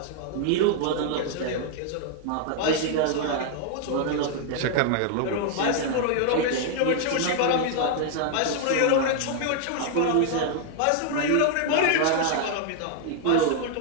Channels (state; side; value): different; both; correlation 0.00